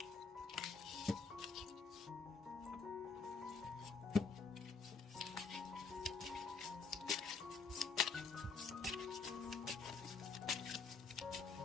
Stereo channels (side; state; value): right; quieter; 4.9 dB